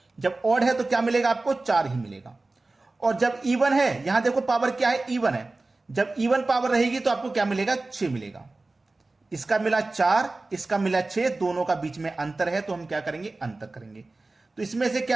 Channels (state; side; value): quieter; left; 3.2 dB